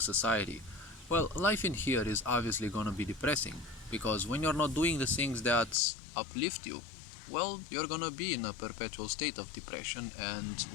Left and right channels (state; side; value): drops out; right; at 5.8 s